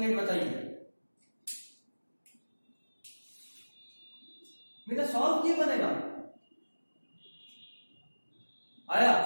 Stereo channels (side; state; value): both; inverted; correlation -1.00